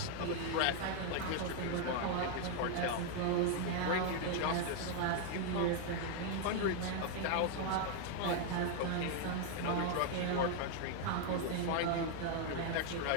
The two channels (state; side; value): different; both; correlation 0.01